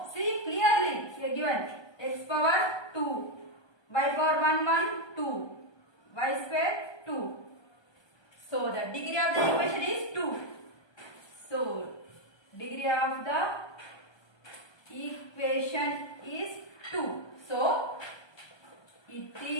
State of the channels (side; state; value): right; late; 1.3 ms